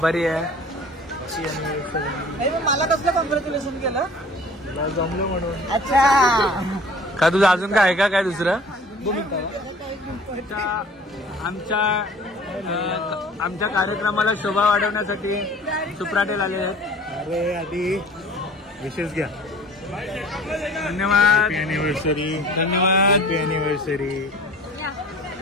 आहे. मला कसलं कॉंग्रॅच्युलेशन केलं? जमलं म्हणून. अच्छा, का तुझं अजून काय आहे का काय दुसरं? आमच्या कार्यक्रमाला शोभा वाढवण्यासाठी सुप्राटेल आले आहेत. अरे आधी विशेष घ्या. धन्यवाद. अॅनिव्हर्सरी. धन्यवाद. अॅनिव्हर्सरी.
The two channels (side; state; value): both; normal; correlation 0.46